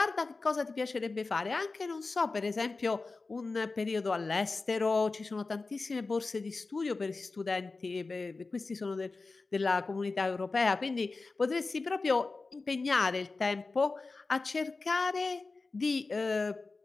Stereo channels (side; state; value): right; quieter; 3.8 dB